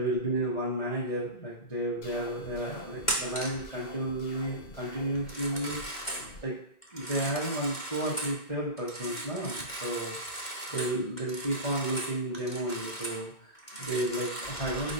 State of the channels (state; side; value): late; right; 2.1 ms